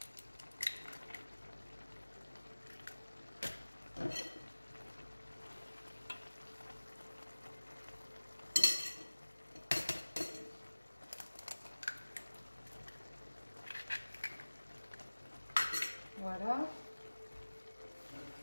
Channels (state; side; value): inverted; both; correlation -1.00